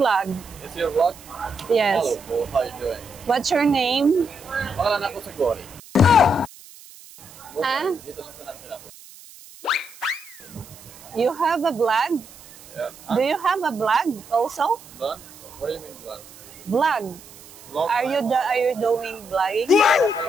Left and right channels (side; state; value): right; noise; hiss, 20 dB below the sound